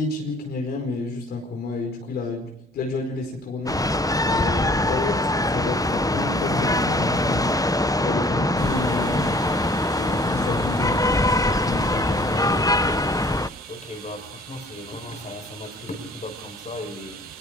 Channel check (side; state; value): both; normal; correlation 0.54